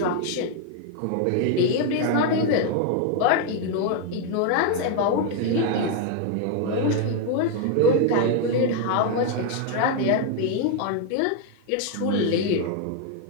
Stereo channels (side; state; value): both; different; correlation 0.00